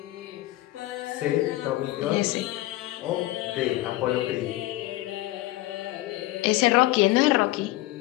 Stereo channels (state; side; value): quieter; right; 17.3 dB